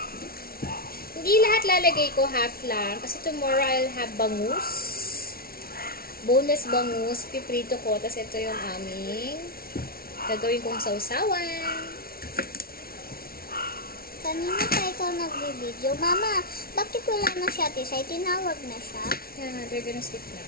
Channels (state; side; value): late; right; 0.44 ms